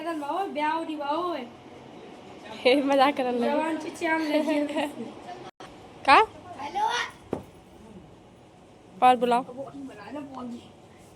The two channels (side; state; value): both; identical; correlation 1.00